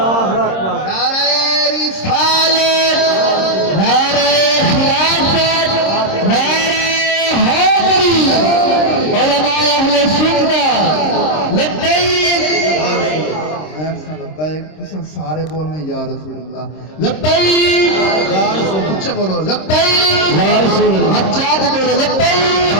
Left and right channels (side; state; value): right; late; 26 ms